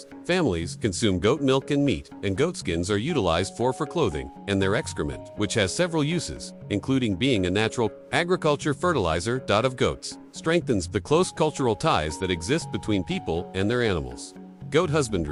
Families consume goat milk and meat, and goat skins are utilized for clothing, and their excrement, which has several uses, including being a natural agriculture fertilizer. Of goats, strengthens the close cultural ties that exist between people and their animals. Goat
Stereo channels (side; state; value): both; identical; correlation 1.00